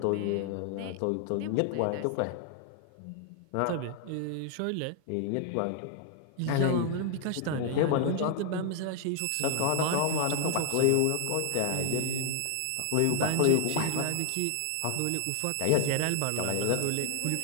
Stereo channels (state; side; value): different; both; correlation 0.00